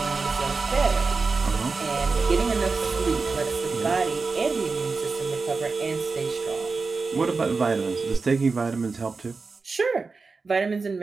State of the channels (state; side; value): quieter; left; 4.3 dB